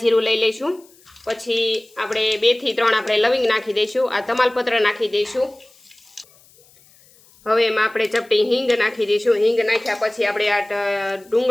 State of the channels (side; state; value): left; noise; hiss, 29 dB below the sound